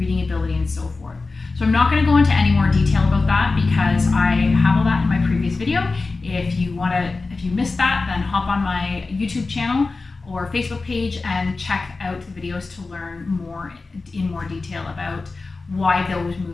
ability, and so forth. So I'm not going to go into any more detail about that because I have all that in my previous video. If you missed that, then hop on my YouTube channel or Facebook page and check out the videos to learn more in more detail about why those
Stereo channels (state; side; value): quieter; right; 3.8 dB